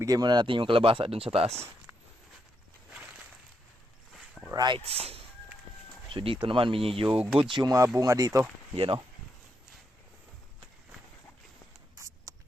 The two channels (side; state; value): both; normal; correlation 0.81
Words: muna natin yung kalabasa doon sa taas. Alright. So, dito naman, medyo goods yung mga bunga dito. Yan, o.